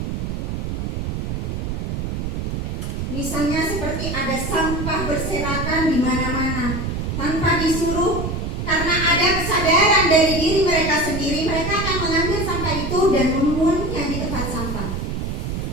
Misalnya seperti ada sampah berserakan di mana-mana tanpa disuruh, karena ada kesadaran dari diri mereka sendiri, mereka akan mengambil sampah itu dan membuangnya di tempat sampah.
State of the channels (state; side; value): noise; right; rumble, 3 dB below the sound